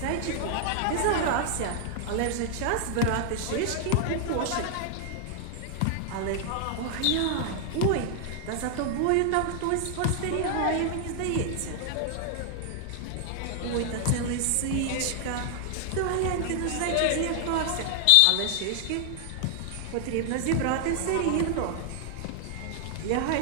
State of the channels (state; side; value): different; both; correlation 0.00